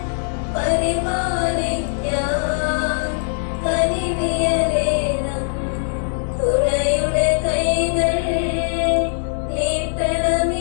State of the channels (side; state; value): right; silent; 60 dB below the other